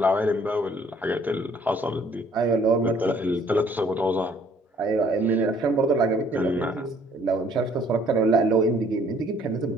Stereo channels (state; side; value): normal; both; correlation 0.60